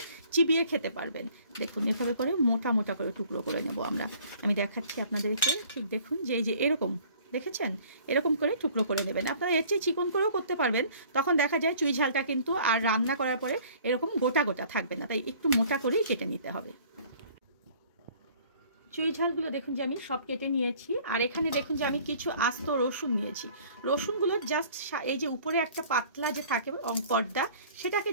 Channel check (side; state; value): both; inverted; correlation -0.53